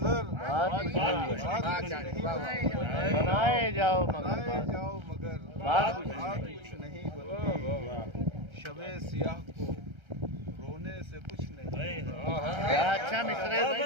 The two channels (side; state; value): left; late; 1.3 ms